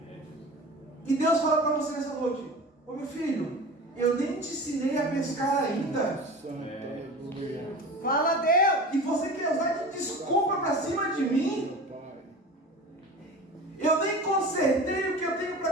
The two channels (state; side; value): normal; both; correlation 0.35